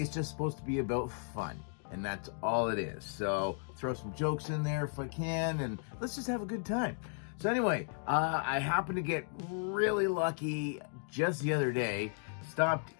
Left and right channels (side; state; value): right; silent; 54 dB below the other